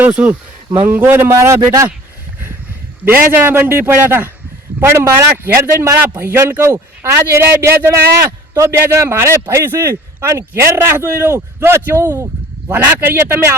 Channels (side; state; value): both; normal; correlation 0.47